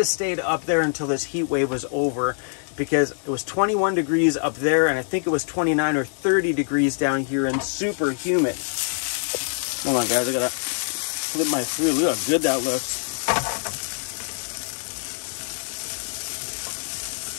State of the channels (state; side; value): silent; right; 62 dB below the other